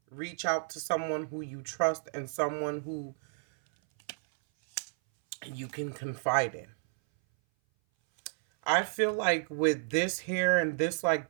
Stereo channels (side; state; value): left; silent; 57 dB below the other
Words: reach out to someone who you trust and someone who you can confide in. I feel like with this here and this like